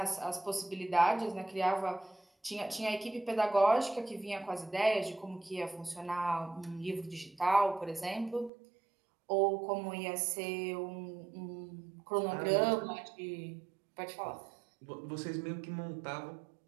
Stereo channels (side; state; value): left; drops out; at 8.5 s